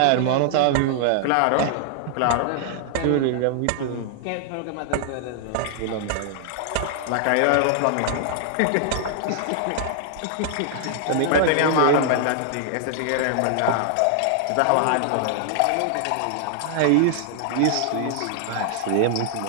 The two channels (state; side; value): different; both; correlation 0.00